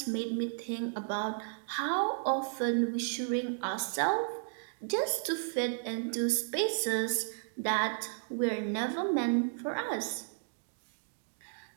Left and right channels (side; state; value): left; silent; digital silence